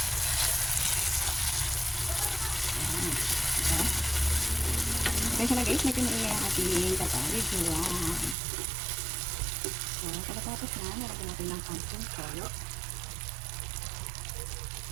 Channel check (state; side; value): drops out; left; at 8.3 s